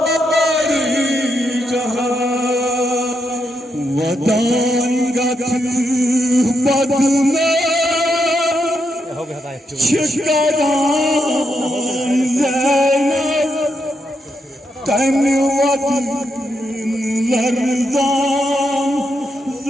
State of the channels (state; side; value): normal; both; correlation 0.82